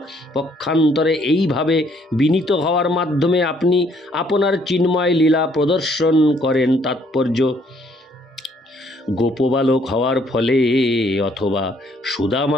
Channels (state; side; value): normal; both; correlation 0.66